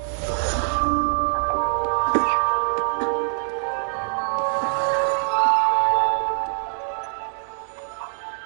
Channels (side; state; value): left; silent; digital silence